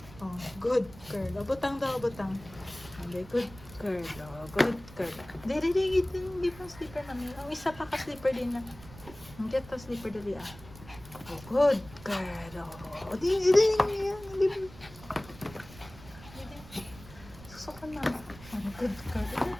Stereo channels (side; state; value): right; noise; rumble, 18 dB below the sound